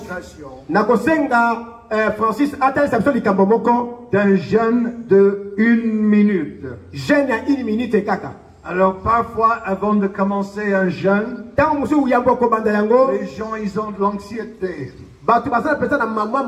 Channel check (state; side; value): identical; both; correlation 1.00